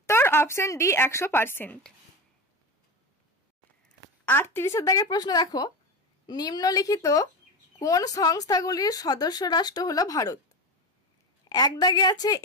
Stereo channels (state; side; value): normal; both; correlation 0.22